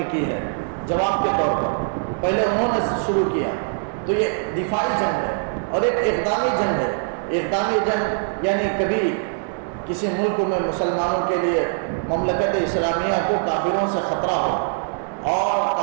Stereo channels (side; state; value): left; silent; 64 dB below the other